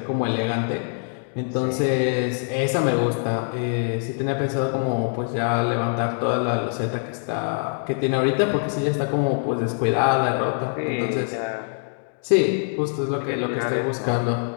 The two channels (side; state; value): right; silent; digital silence